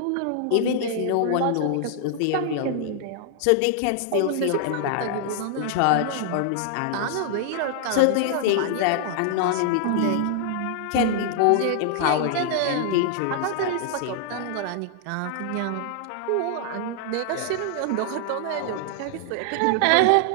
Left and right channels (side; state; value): both; different; correlation 0.00